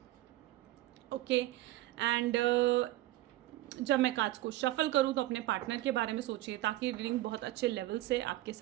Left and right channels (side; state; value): left; quieter; 16.2 dB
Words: ओके। एंड जब मैं कार्ड्स को शफल करूं तो अपने पार्टनर के बारे में सोचिए ताकि रीडिंग बहुत अच्छे लेवल से आपके